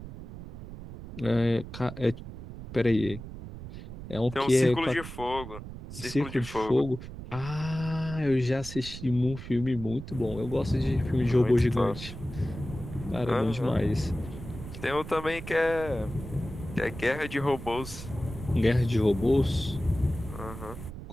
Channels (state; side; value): noise; right; rumble, 11 dB below the sound